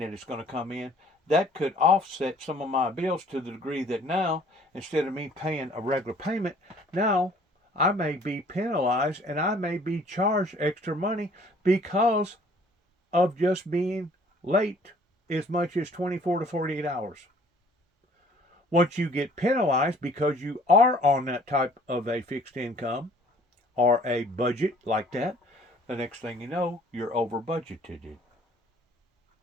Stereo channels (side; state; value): both; normal; correlation 0.56